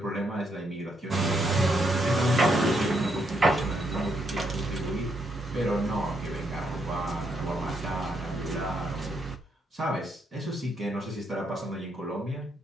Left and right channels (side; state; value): both; normal; correlation 0.76